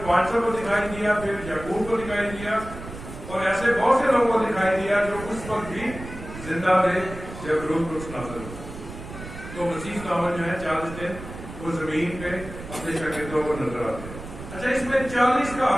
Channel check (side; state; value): right; noise; rumble, 12 dB below the sound